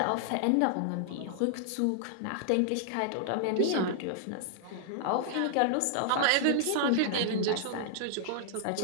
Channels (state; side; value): different; both; correlation -0.01